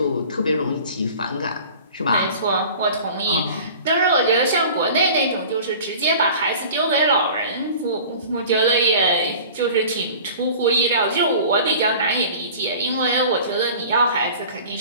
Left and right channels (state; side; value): inverted; both; correlation -0.43